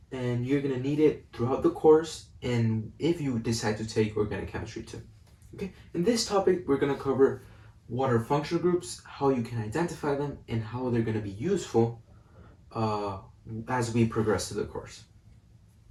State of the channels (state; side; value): identical; both; correlation 1.00